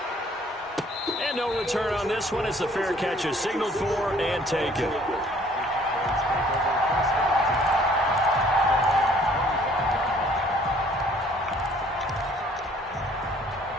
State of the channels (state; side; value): normal; both; correlation 0.58